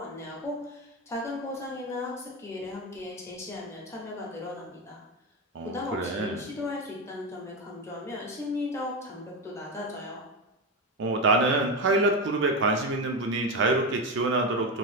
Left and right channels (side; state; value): both; normal; correlation 0.14